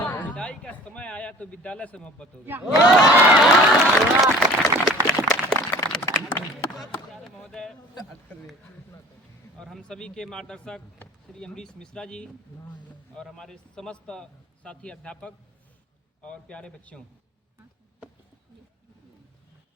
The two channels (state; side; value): normal; both; correlation 0.46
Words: का समय आया तो विद्यालय से मोहब्बत हो गई। महोदय और हम सभी के मार्गदर्शक श्री अमरीश मिश्रा जी और हमारे समस्त साथी अध्यापक और प्यारे बच्चों,